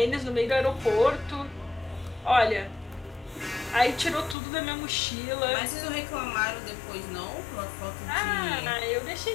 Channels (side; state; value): right; drops out; at 4.4 s